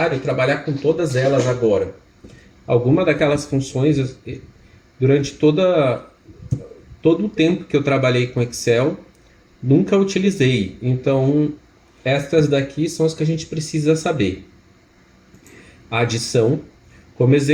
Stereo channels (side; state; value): both; identical; correlation 1.00